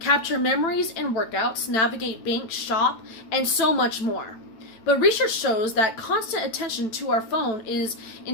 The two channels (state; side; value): late; right; 9.0 ms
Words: memories and workouts, navigate bank, shop, and so much more. But research shows that constant attention to our phone is